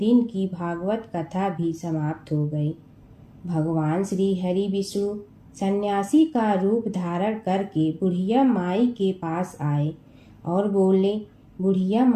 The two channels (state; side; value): identical; both; correlation 1.00